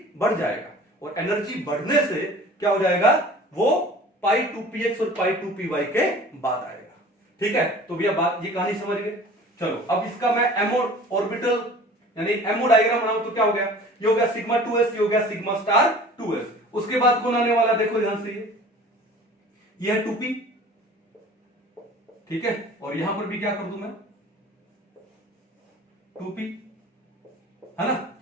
बढ़ जाएगा। और एनर्जी बढ़ने से क्या हो जाएगा, वो पाई 2px और पाई 2py के बाद आएगा, ठीक है। तो भैया बात, ये कहानी समझ गए। चलो अब इसका मैं एमओ ऑर्बिटल यानी एमओ डायग्राम बनाऊं तो क्या हो गया, ये हो गया सिग्मा 2s, ये हो गया सिग्मा स्टार 2s। उसके बाद कौन आने वाला, देखो ध्यान से, ये है 2p, ठीक है, और यहां पर भी क्या कर दूं मैं, 2p, है ना।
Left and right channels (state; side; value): normal; both; correlation 0.44